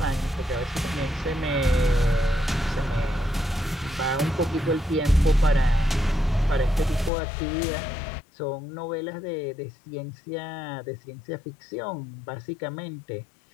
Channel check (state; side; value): drops out; right; at 7.1 s